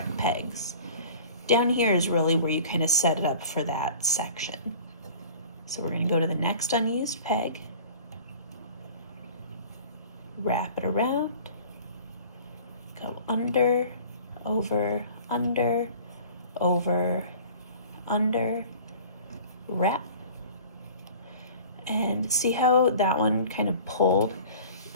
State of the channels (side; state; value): both; inverted; correlation -0.44